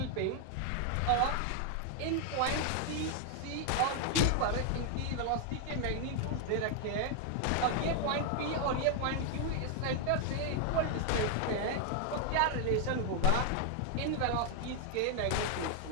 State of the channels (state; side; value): different; both; correlation 0.00